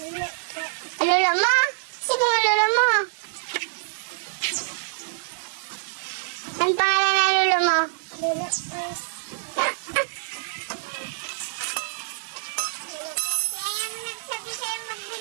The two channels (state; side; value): silent; left; digital silence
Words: Lolo mo? Sino ang lolo mo? Ang pangalan ng lolo mo?